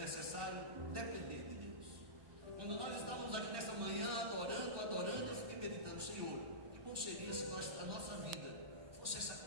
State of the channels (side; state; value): left; late; 1.2 ms